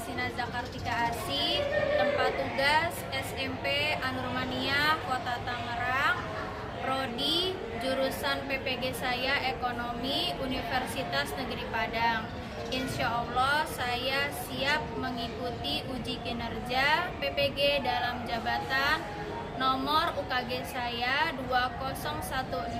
Zakartika Asih, tempat tugas SMP Anurmania Kota Tangerang, Prodi jurusan PPG saya Ekonomi Universitas Negeri Padang. Insya Allah saya siap mengikuti uji kinerja PPG dalam jabatan. Nomor UKG saya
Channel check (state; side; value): identical; both; correlation 1.00